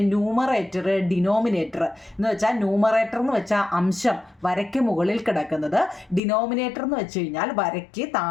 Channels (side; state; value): right; drops out; at 6.2 s